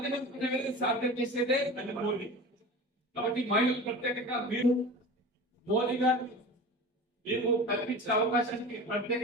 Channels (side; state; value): both; normal; correlation 0.34